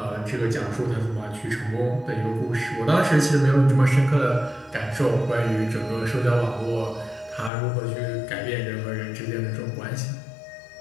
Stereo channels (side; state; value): right; drops out; at 7.5 s